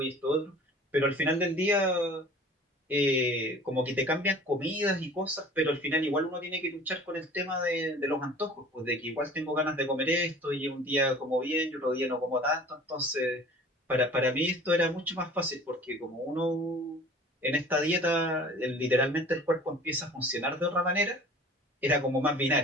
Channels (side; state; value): both; normal; correlation 0.45